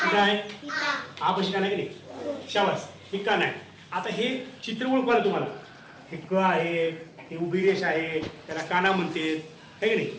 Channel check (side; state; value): both; identical; correlation 1.00